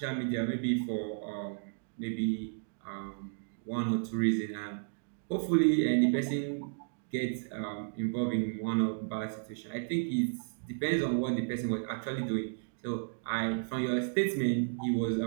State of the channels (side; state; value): left; silent; digital silence